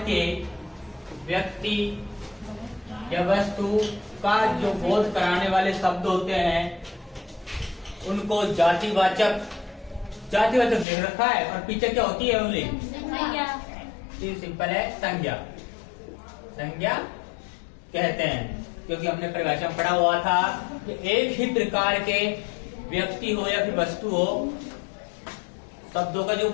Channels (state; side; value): drops out; right; at 10.9 s